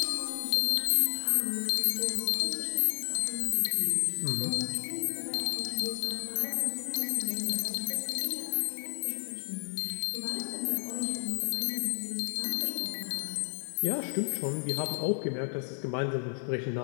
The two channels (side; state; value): right; silent; digital silence